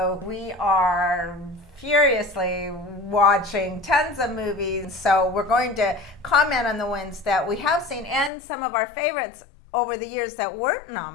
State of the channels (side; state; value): right; drops out; at 8.3 s